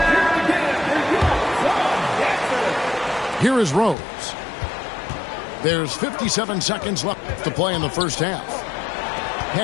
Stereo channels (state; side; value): drops out; right; at 4.0 s